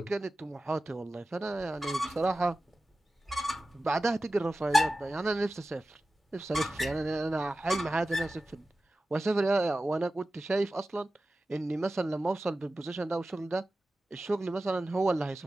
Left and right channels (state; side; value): normal; both; correlation 0.95